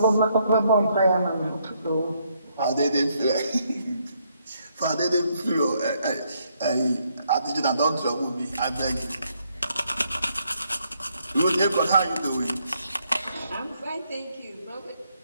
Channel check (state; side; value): inverted; both; correlation -0.73